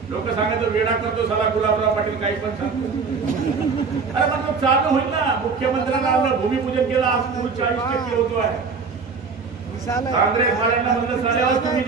लोक सांगायचं वेडा करतो साला गुलाबराव पाटील, काही पण सांगतो। अरे मतलब चालू होईल ना। मुख्यमंत्र्यांना आपलं भूमिपूजन केलं, आज पूल 40% होतो आहे। काँग्रेस वाल्यांना म्हणलं साल्यावर तुम्ही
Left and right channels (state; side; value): quieter; left; 5.1 dB